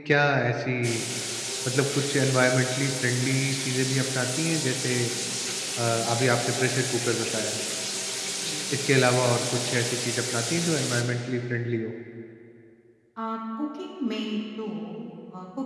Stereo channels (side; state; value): both; identical; correlation 1.00